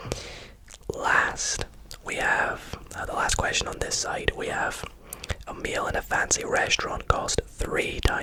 Last, we have the last question on this side. We have a meal in a fancy restaurant cost 3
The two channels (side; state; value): both; identical; correlation 1.00